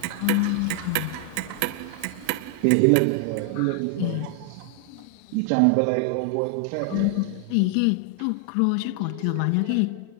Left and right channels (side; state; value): both; different; correlation 0.00